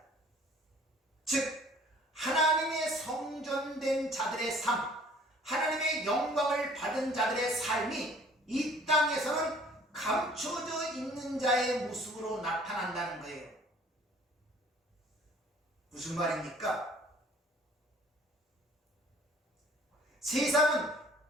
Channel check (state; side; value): normal; both; correlation 0.53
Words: 즉 하나님의 성전된 자들의 삶, 하나님의 영광을 받은 자들의 삶이 이 땅에서는 감춰져 있는 자의 모습으로 나타난다는 거예요. 무슨 말입니까? 세상은